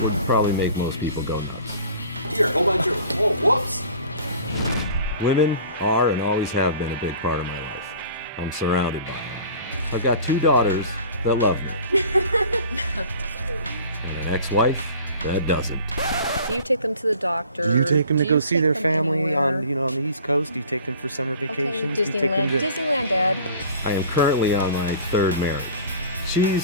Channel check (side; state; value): both; inverted; correlation -0.45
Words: Probably make most people go nuts. Here, hold on, whoa, whoops! Women are and always have been a big part of my life. I'm surrounded by them. I've got 2 daughters that love me. And an ex-wife that doesn't. Do you take them to the doctor? Do you take them to go see their family anywhere? on the East Coast? Do you take them for summer vacations? Okay, Do you take them Disneyland, Dad. I am currently on my 3rd marriage.